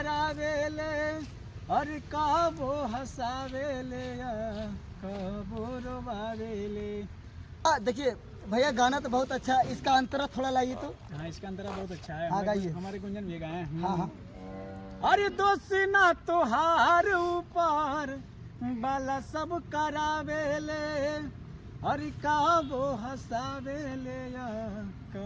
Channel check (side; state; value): both; identical; correlation 1.00